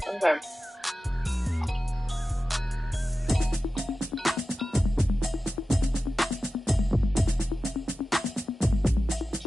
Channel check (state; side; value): normal; both; correlation 0.94